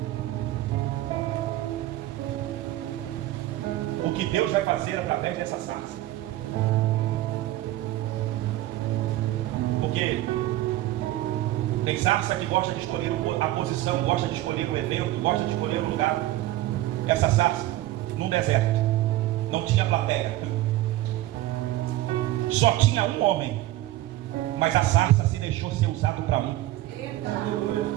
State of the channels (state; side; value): quieter; left; 15.6 dB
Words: o que Deus vai fazer através dessa sarça. Porque tem sarça que gosta de escolher a posição, gosta de escolher o evento, gosta de escolher o lugar. Essa sarça, num deserto, não tinha plateia, só tinha um homem, mas a sarça se deixou ser usado para um. Eita.